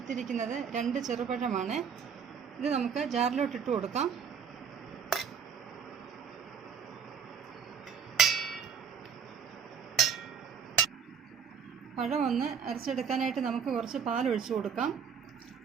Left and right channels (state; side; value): quieter; left; 6.8 dB